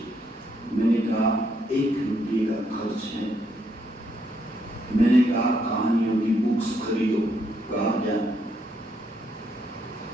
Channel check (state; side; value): normal; both; correlation 0.75